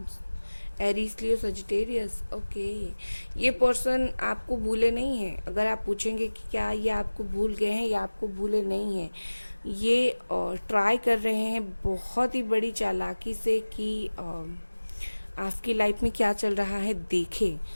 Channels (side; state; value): both; inverted; correlation -1.00